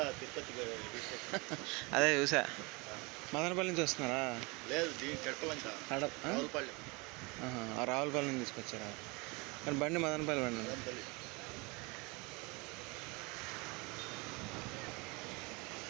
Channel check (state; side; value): quieter; left; 27.4 dB